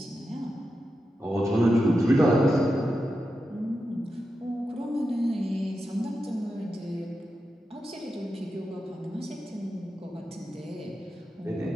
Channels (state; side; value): normal; both; correlation 0.89